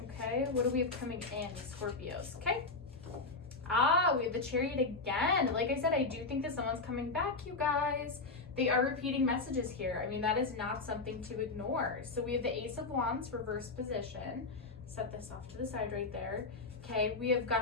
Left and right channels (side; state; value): right; quieter; 3.7 dB